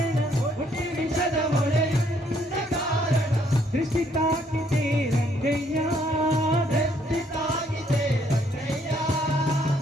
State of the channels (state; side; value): normal; both; correlation 0.68